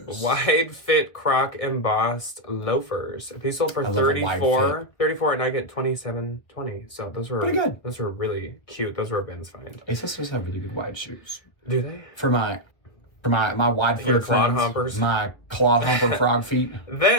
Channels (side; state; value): right; late; 1.2 ms